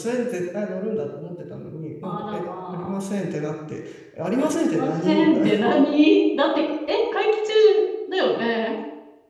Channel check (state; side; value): identical; both; correlation 1.00